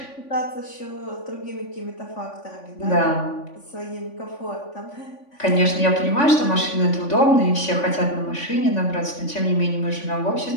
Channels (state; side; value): late; right; 3.5 ms